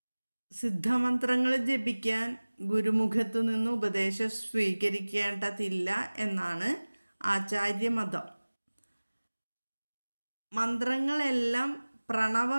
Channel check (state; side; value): inverted; both; correlation -1.00